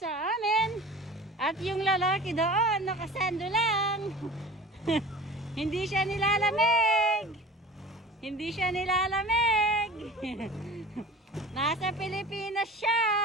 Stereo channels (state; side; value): normal; both; correlation 0.40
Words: amin. At yung lalaki doon, nakasando lang. Hindi siya nilalamig. Hindi siya nilalamig. Nasa Pilipinas siya.